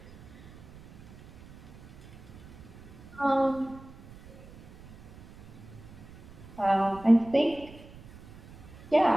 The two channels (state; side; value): noise; right; rumble, 19 dB below the sound